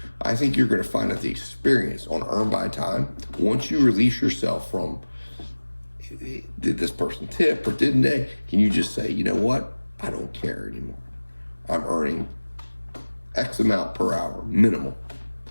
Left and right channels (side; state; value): both; inverted; correlation -1.00